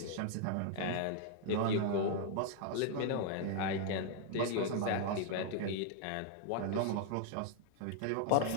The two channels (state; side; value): different; both; correlation 0.00